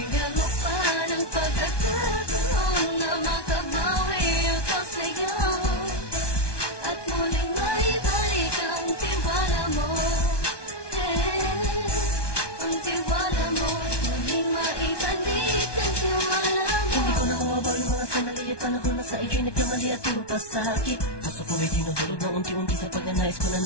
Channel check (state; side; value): late; right; 1.2 ms